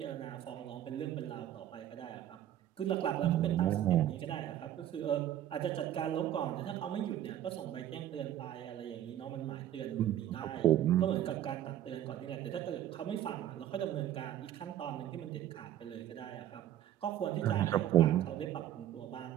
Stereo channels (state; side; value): quieter; left; 11.8 dB